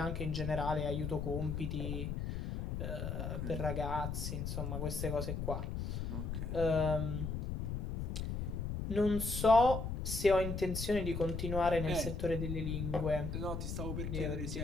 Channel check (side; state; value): left; noise; rumble, 3 dB below the sound